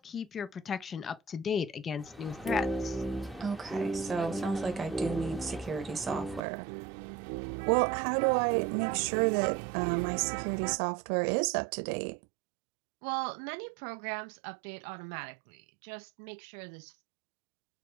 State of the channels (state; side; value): drops out; left; at 6.4 s